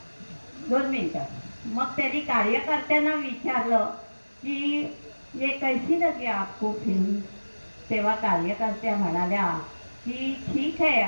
2 मिनिटं, मग त्यांनी कार्यकर्त्यांना विचारलं की ये कैसी लगी आपको फिल्म. तेव्हा कार्यकर्त्या म्हणाल्या की ठीक है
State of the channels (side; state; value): both; inverted; correlation -1.00